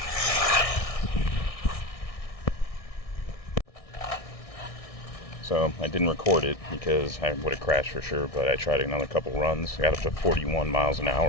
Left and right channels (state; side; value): late; right; 1.6 ms